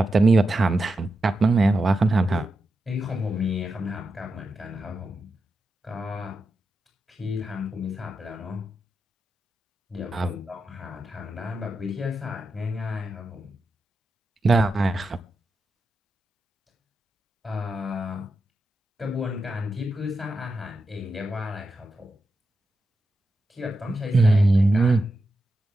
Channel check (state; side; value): normal; both; correlation 0.88